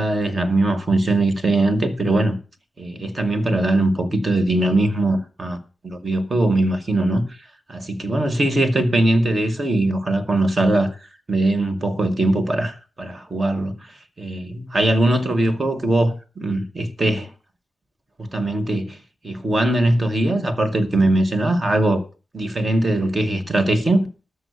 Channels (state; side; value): normal; both; correlation 0.89